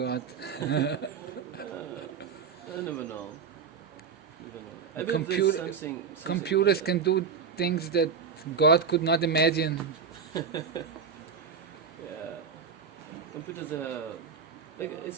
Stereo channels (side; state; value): left; quieter; 6.0 dB